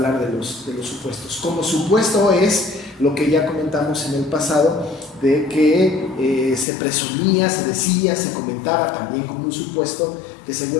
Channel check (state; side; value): drops out; right; at 6.7 s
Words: de los supuestos. Como supuesto es lo que ya comentamos en el pasado, de que se presumía, se decía, se comentaba también como un supuesto que